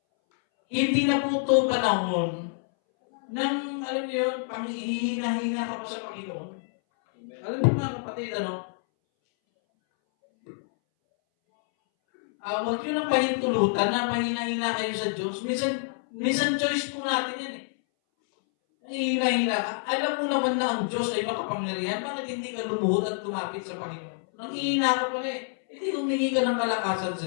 hindi na po ito panahon nang, alam niyo yun, panghihina-hina ka pa sa Panginoon. Alam niyo mga kapatid, huwag niyo nang pahintulutan na mahina-hina kayo sa Diyos. Minsan choice po natin yan Hina-hina ka. Alam mo naman na ang Diyos ay makapangyarihan. Bakit hindi ka lumuhod at lumapit sa Panginoon? Nanghihina ka pala Hindi humingi ka ng kalakasan sa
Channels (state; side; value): silent; right; 60 dB below the other